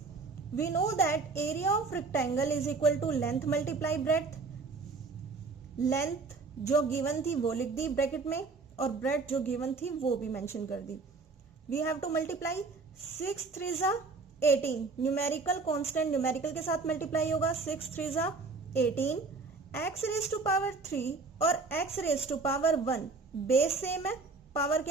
We know that area of rectangle is equal to length multiply breadth. Length जो गिवन थी वो लिख दी ब्रैकेट में और ब्रेड जो गिवन थी वो भी मेंशन कर दी। We have to multiply 6 3 18, numerical constant numerical के साथ मल्टीप्लाई होगा, 6 3 18, x raised to power 3 और x raised to power 1 base same है पावर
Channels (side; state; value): left; quieter; 4.2 dB